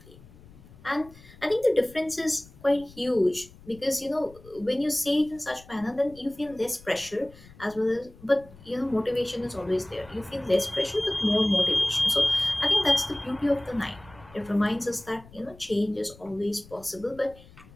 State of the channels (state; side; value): noise; left; rumble, 22 dB below the sound